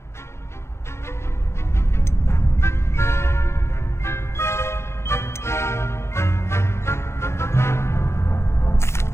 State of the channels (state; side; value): late; right; 0.13 ms